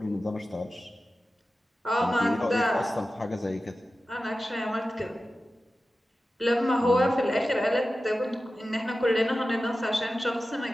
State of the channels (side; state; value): both; normal; correlation 0.94